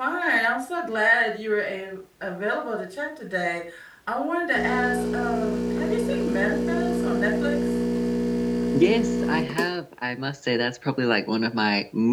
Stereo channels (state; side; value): identical; both; correlation 1.00